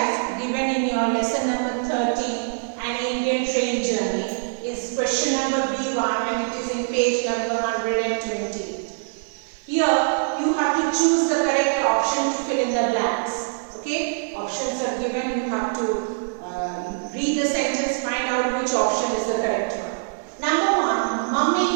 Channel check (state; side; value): silent; left; 63 dB below the other